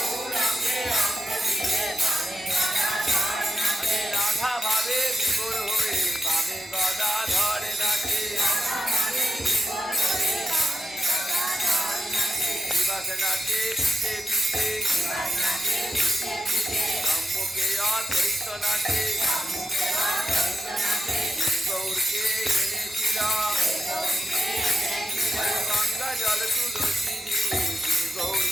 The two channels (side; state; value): both; normal; correlation 0.86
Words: আরে রাধা ভাবে বিভোর হয়ে বামে গদা ধরে নাচে। নিবাস নাচে পিছে পিছে সম্মুখে অদ্বৈত নাচে গৌরকে এনেছিল গঙ্গা জল তুলসী দিয়ে যে